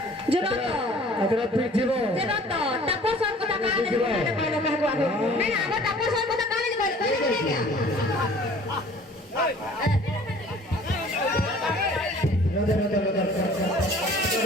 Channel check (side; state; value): both; normal; correlation 0.50